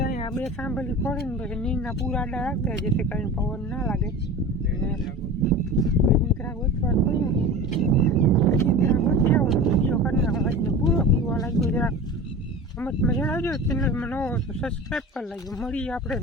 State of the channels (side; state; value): both; normal; correlation 0.33